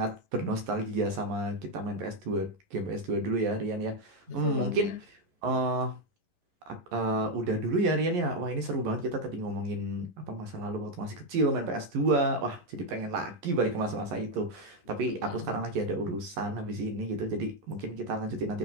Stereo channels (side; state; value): left; late; 11 ms